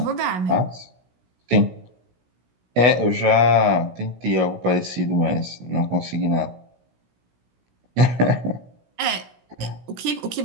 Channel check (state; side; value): late; left; 16 ms